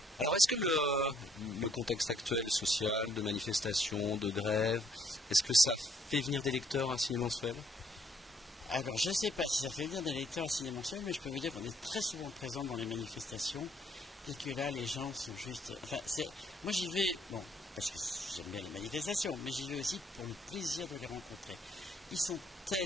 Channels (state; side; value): normal; both; correlation 0.66